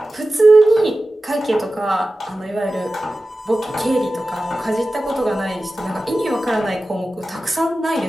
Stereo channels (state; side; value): normal; both; correlation 0.95